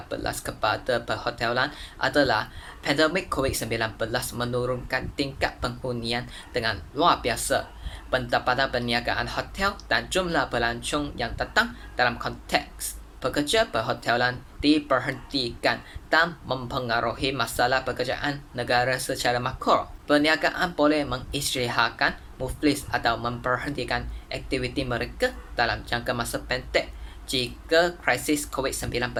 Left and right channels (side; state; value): both; identical; correlation 1.00